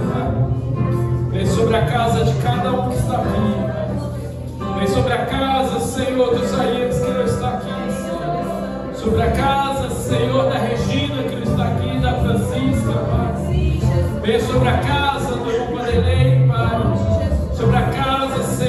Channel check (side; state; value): both; identical; correlation 1.00